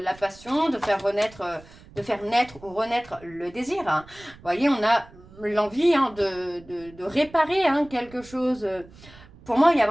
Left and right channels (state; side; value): noise; right; rumble, 22 dB below the sound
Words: passion, de faire naître ou renaître le désir. Hein. Vous voyez, on a l'envie de réparer quelque chose. Pour moi, il y a